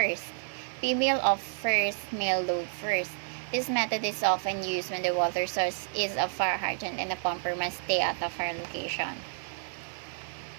Female off first, male load first. This method is often used when the water source is a fire hydrant and the pumper must stay at the fire location.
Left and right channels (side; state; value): left; silent; digital silence